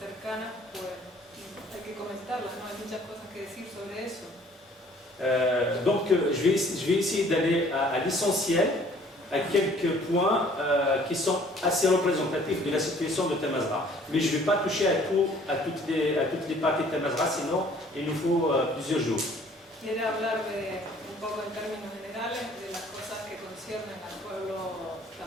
pues hay que comentarlas, ¿no? Hay muchas cosas que decir sobre eso. Donc je vais essayer d'aller à l'essentiel, à quelques points qui sont assez représentatifs de la situation de Tamazra. Mais je ne vais pas toucher à toutes les parties de Tamazra, sinon il nous faut plusieurs jours. Quiere hablar un poco en términos generales de las cosas que conciernen al pueblo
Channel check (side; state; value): both; normal; correlation 0.56